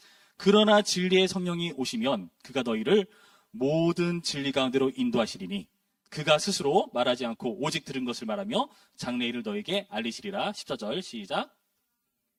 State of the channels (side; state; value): both; identical; correlation 1.00